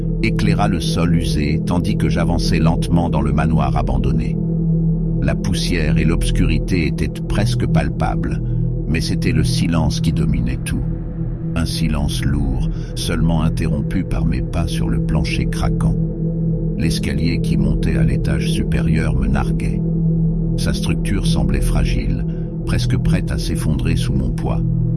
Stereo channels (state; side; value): identical; both; correlation 1.00